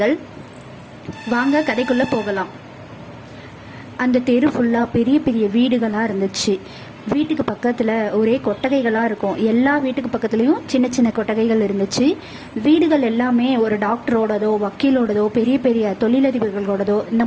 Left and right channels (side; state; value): both; identical; correlation 1.00